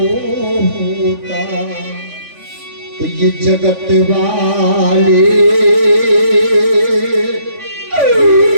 होता तो ये जगत वाले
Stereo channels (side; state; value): left; late; 3.5 ms